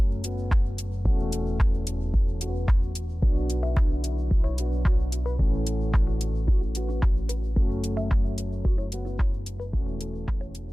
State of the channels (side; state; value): both; normal; correlation 0.97